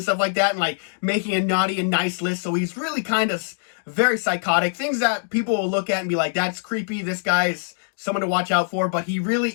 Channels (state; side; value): silent; right; digital silence